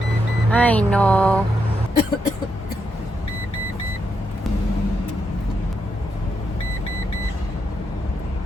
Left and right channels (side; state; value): both; normal; correlation 0.81